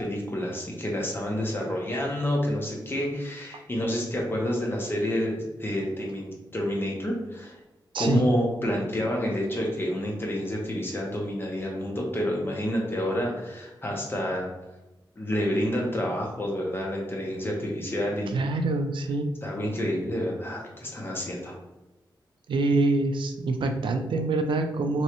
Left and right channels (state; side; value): normal; both; correlation 0.77